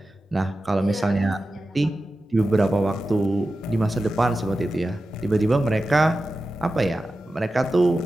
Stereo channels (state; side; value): normal; both; correlation 0.93